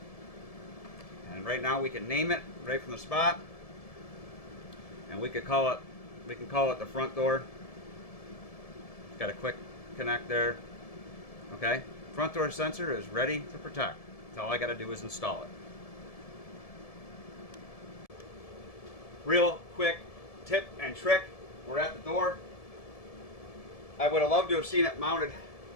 And right now we can name it right from the spot. And we can call it the front door. Got a quick connect there. Okay. Front door sensor is ready to protect. So all I got to do is install it. Real quick tip and trick. We're at the door. I would have loved to have seen it mounted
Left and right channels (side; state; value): right; late; 1.7 ms